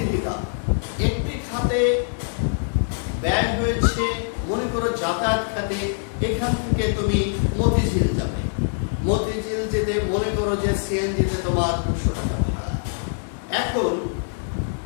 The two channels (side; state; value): right; silent; digital silence